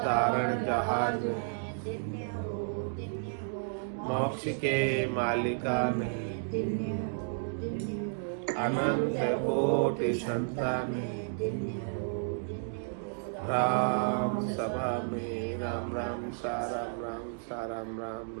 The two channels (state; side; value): silent; left; digital silence